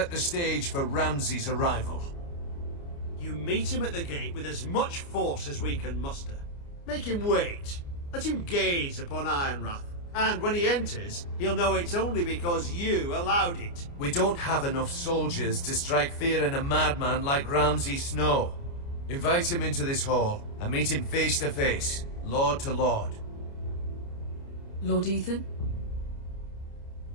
the stage for Ramsay's arrival. You meet him at the gate with as much force as we can muster. Make him wait. Let him gaze upon Ironrath. And when he enters, he'll know it's only because you allowed it. We don't have enough soldiers to strike fear in a madman like Ramsay Snow. Invite him into this hall, and meet him face to face, lord to lord. Lord Ethan?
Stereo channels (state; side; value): late; right; 29 ms